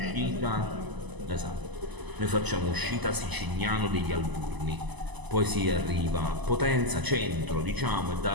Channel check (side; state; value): left; late; 1.0 ms